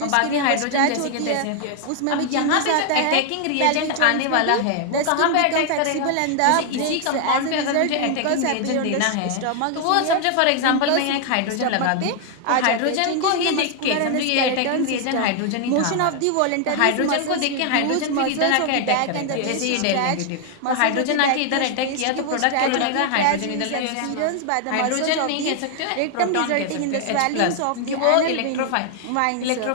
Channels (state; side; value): different; both; correlation 0.00